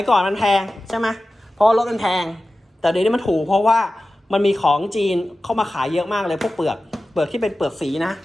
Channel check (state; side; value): normal; both; correlation 0.95